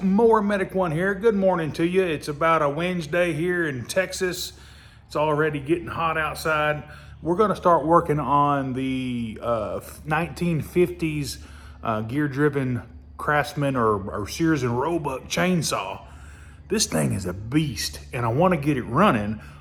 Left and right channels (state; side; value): identical; both; correlation 1.00